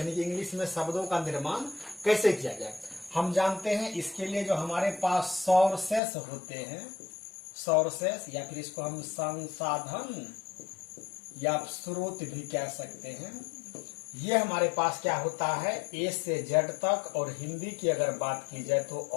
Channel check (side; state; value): right; drops out; at 6.0 s